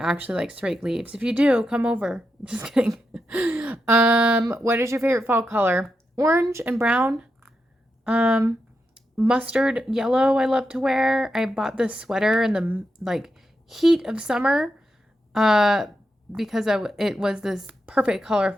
likes to rake leaves. If you do, come over. Just kidding. What is your favorite fall color? Orange and brown. Mustard yellow I love to wear. I bought this sweater in the heat of summer because it was this perfect color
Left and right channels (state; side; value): normal; both; correlation 0.86